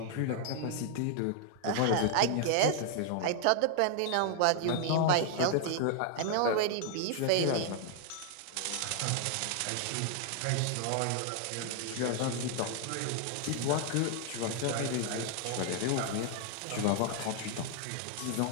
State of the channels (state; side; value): different; both; correlation 0.00